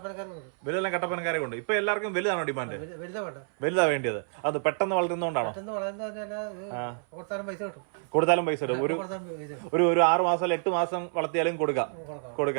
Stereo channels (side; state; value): left; silent; 58 dB below the other